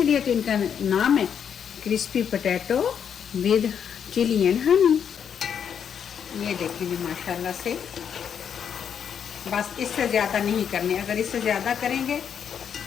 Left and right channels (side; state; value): right; quieter; 7.9 dB